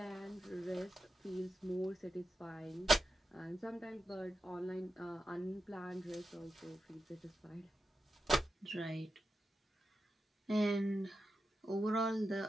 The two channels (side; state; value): both; normal; correlation 0.90